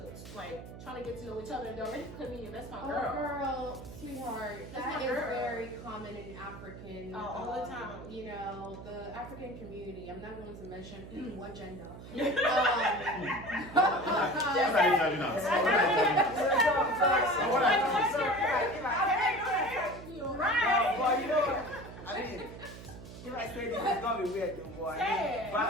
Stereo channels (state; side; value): noise; right; hum, 14 dB below the sound